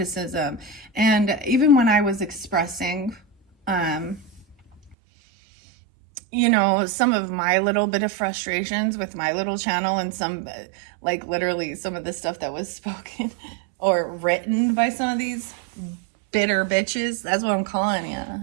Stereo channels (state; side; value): drops out; left; at 5.0 s